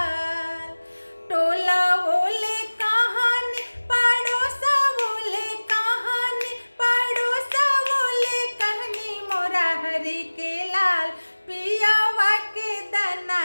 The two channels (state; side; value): inverted; both; correlation -1.00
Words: टोला ओले कहानी पड़ोसा ओले कहानी, पड़ोसा ओले कहनी मोरा हरि के लाल। पियावा के दाना